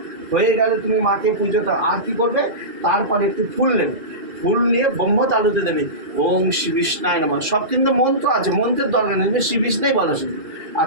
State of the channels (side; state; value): left; late; 2.4 ms